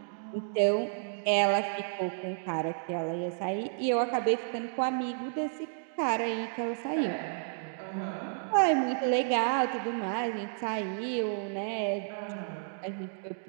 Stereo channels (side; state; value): left; silent; digital silence